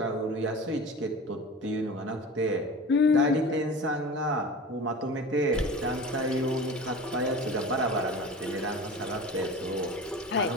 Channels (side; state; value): both; normal; correlation 0.35